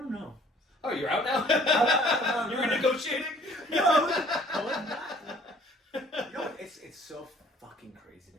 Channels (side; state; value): both; normal; correlation 0.55